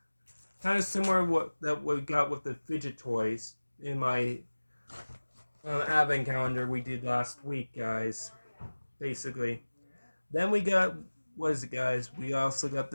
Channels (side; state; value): both; inverted; correlation -1.00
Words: kind of similar that we got with the fidget toys in my advent calendar we did last week, guys. Basically. Then we got, what is it, guys? We also got